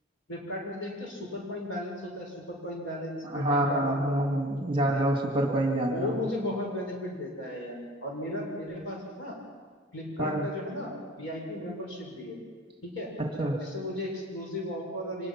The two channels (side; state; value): both; normal; correlation 0.43